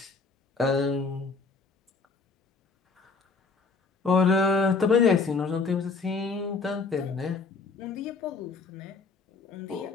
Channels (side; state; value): right; quieter; 4.4 dB